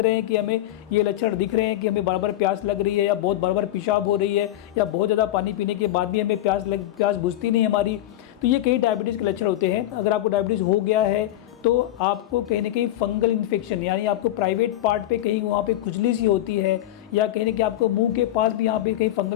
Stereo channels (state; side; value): quieter; right; 13.7 dB